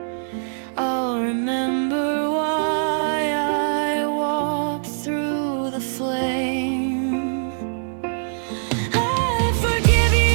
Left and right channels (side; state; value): left; silent; digital silence